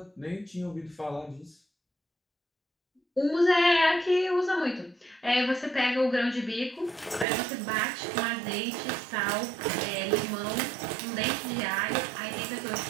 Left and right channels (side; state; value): left; drops out; at 7.2 s